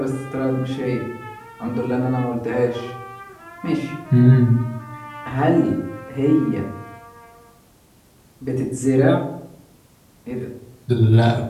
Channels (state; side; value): identical; both; correlation 1.00